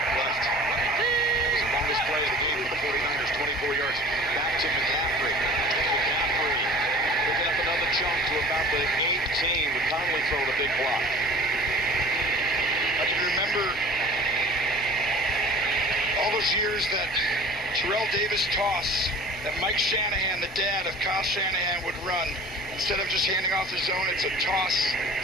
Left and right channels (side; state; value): both; normal; correlation 0.44